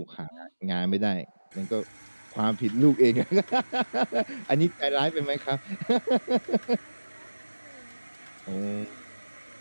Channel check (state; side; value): inverted; both; correlation -1.00